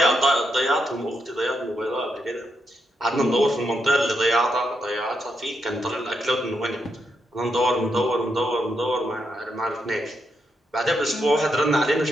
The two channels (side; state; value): both; normal; correlation 0.81